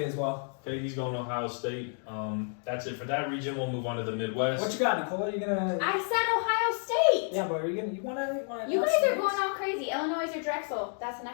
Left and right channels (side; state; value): right; silent; 58 dB below the other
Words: as well. Okay, he's going Ohio State. That's it for that region. We'll move on to the Midwest. What you got, Nicole? Are you gonna? I said Ohio State. Yeah, but are you gonna? You wanna? You guys are going all crazy. Illinois or Drexel? That's the